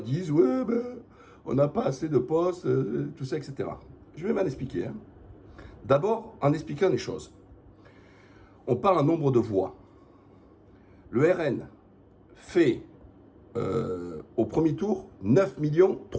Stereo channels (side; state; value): both; identical; correlation 1.00